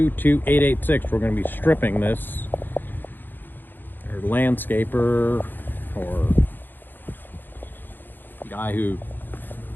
We're going to be stripping this. Our landscaper or guy who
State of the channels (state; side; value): late; right; 0.092 ms